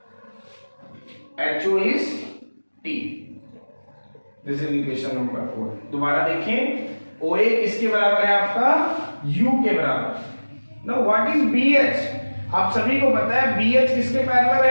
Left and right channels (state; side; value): inverted; both; correlation -1.00